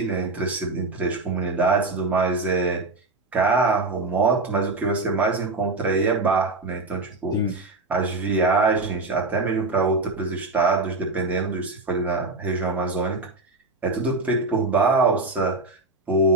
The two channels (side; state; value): left; quieter; 3.2 dB